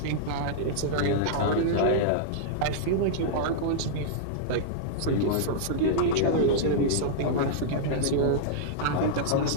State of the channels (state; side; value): different; both; correlation -0.02